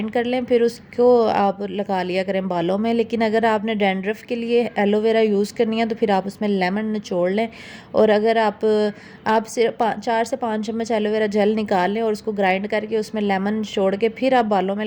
कर लें, फिर उसको आप लगा लिया करें बालों में। लेकिन अगर आपने डैंड्रफ के लिए एलोवेरा यूज़ करनी है तो फिर आप उसमें लेमन निचोड़ लें, और अगर आप सिर्फ 4 से 5 चम्मच एलोवेरा जेल निकाल लें और उसको ग्राइंड करके उसमें लेमन निचोड़ के फिर आप बालों में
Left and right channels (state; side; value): identical; both; correlation 1.00